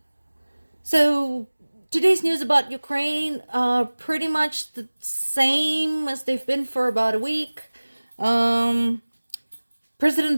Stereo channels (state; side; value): inverted; both; correlation -1.00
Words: So today's news about Ukraine are pretty much the same as they've been for about a week.